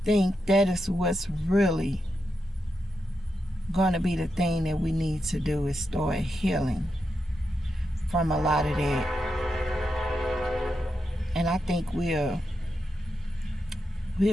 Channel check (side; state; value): both; normal; correlation 0.86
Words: think that is what's really going to be the thing that we need to do, is start healing from a lot of that. And I think we'll